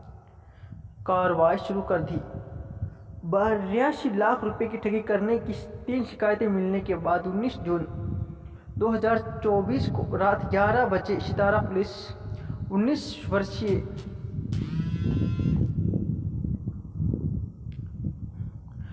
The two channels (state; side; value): identical; both; correlation 1.00